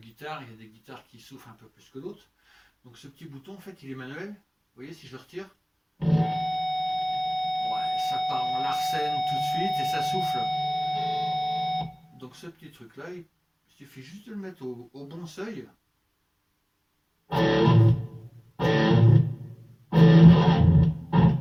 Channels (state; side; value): identical; both; correlation 1.00